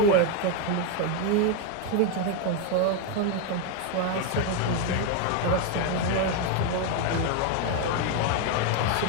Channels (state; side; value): different; both; correlation 0.02